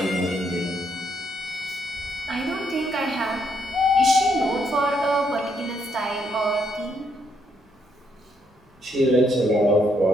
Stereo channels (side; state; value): both; normal; correlation 0.74